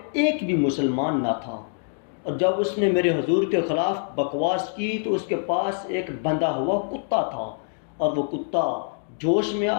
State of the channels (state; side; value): silent; right; 61 dB below the other